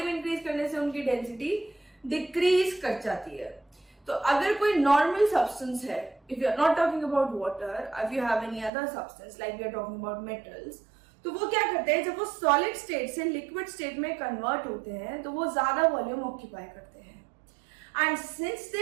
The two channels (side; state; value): left; drops out; at 8.7 s